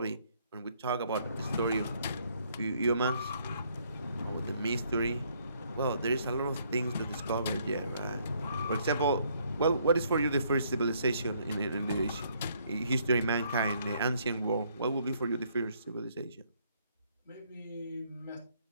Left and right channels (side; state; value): both; inverted; correlation -0.67